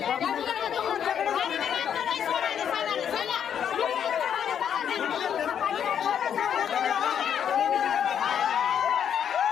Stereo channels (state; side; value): quieter; right; 8.6 dB